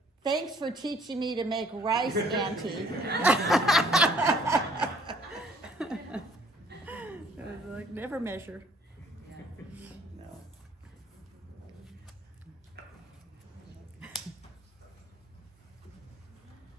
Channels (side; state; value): both; normal; correlation 0.60